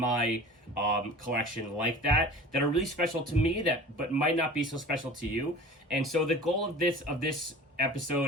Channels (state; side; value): normal; both; correlation 0.40